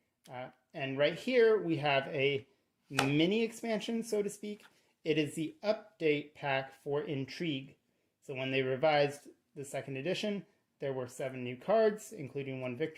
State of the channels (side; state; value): both; identical; correlation 1.00